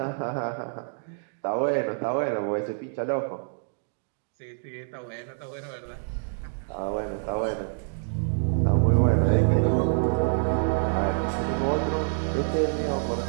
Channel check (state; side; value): silent; left; digital silence